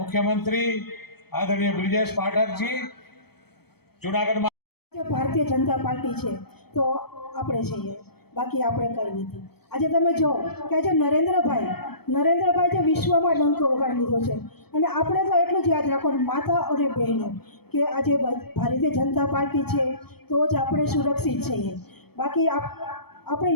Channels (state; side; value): late; right; 0.97 ms